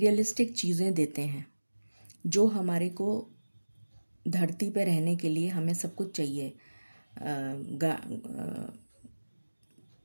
चीज़ें देते हैं, जो हमारे को धरती पे रहने के लिए हमें सब कुछ चाहिए।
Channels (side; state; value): both; inverted; correlation -1.00